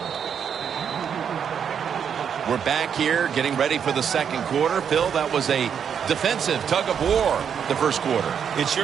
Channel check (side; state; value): left; quieter; 7.7 dB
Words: We're back here getting ready for the 2nd quarter. Phil, that was a defensive tug of war the 1st quarter. It